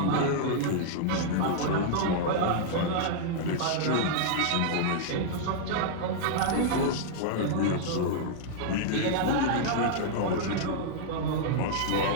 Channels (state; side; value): different; both; correlation -0.01